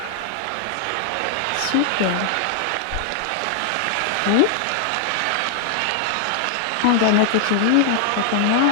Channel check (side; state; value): both; different; correlation -0.01